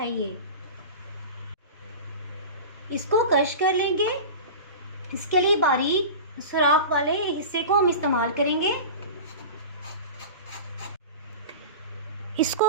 ये। इसको क्रश कर लेंगे। इसके लिए बारीक सुराख वाले हिस्से को हम इस्तेमाल करेंगे।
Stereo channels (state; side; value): inverted; both; correlation -0.32